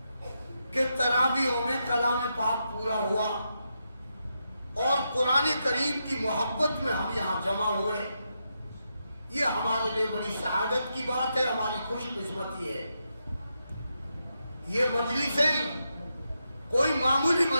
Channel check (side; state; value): both; inverted; correlation -0.84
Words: کہ تراویحوں میں کلام پاک پورا ہوا اور قرآن کریم کی محبت میں ہم یہاں جمع ہوئے. یہ ہمارے لیے بڑی سعادت کی بات ہے، ہماری خوش قسمتی ہے. یہ مجلسیں کوئی معمولی